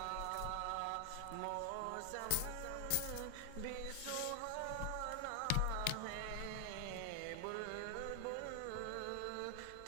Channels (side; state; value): both; different; correlation 0.00